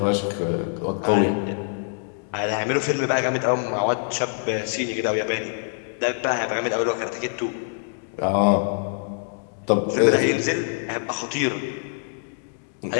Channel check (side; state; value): right; silent; digital silence